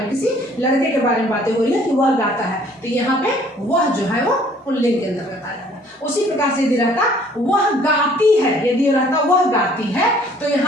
किसी लड़के के बारे में बातें हो रही है कि वह गाता है, तो यहाँ पे वह जो है वो पुल्लिंग के अंतर्गत आ जाएगा। उसी प्रकार से यदि रहता वह गाती है, यदि रहता वह गाती है, तो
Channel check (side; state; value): both; normal; correlation 0.57